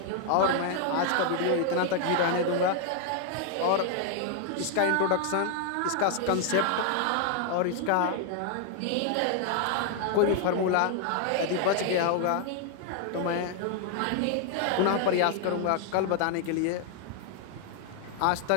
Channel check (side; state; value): both; different; correlation 0.00